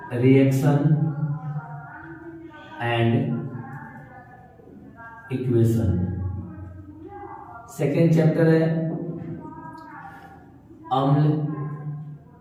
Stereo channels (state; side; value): identical; both; correlation 1.00